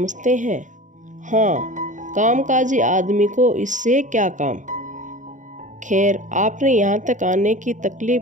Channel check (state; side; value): late; left; 0.36 ms